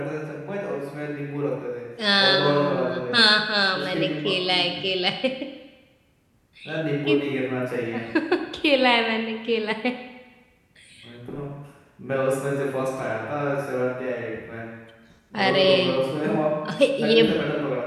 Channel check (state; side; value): identical; both; correlation 1.00